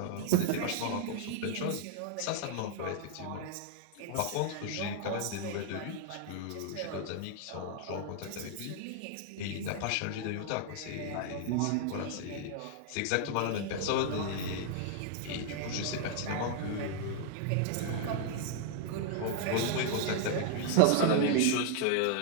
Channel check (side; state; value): both; different; correlation 0.00